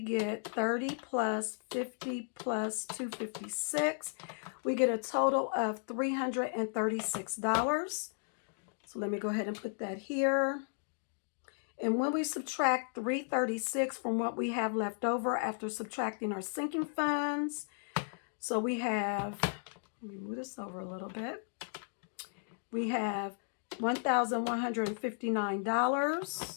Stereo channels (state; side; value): silent; right; digital silence